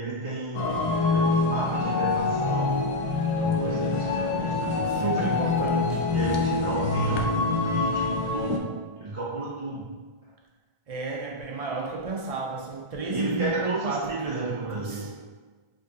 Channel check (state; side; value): late; left; 1.7 ms